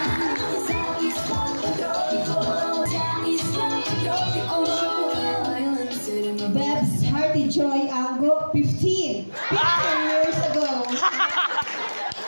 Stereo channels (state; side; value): inverted; both; correlation -1.00